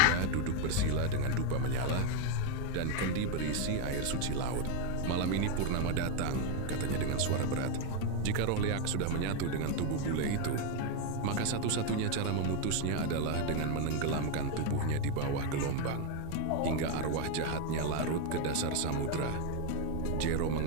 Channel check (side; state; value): both; different; correlation 0.02